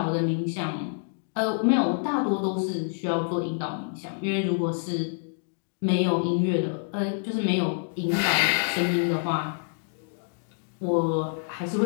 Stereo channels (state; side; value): silent; right; digital silence